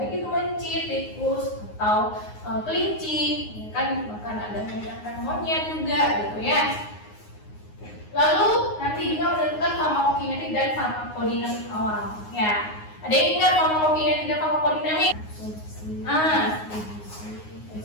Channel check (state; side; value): late; right; 9.6 ms